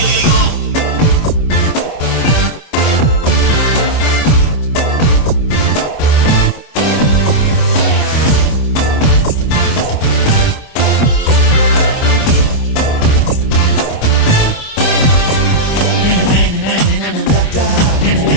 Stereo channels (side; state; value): right; late; 25 ms